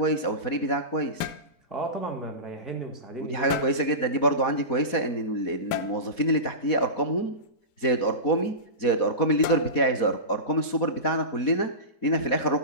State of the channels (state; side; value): late; right; 4.1 ms